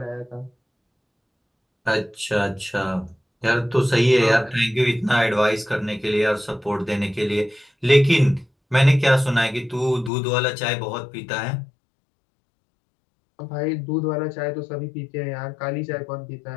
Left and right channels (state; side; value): drops out; right; at 10.1 s